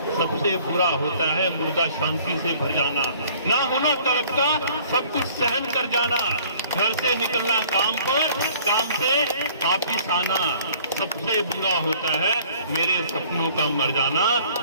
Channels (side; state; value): both; inverted; correlation -0.55